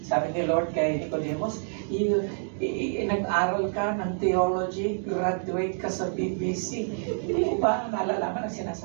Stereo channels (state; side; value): silent; left; digital silence